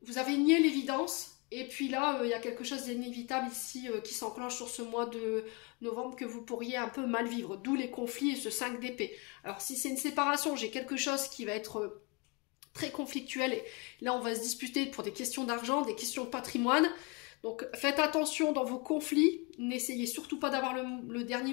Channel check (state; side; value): quieter; right; 30.1 dB